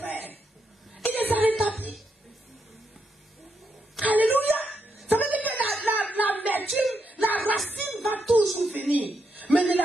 Il les a rétablis. Alléluia. Ça veut dire que l'amertume, la racine va toujours venir. Mais ne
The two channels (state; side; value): normal; both; correlation 0.81